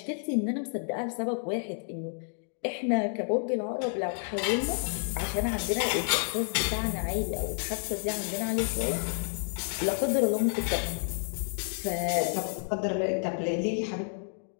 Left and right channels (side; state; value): right; silent; 58 dB below the other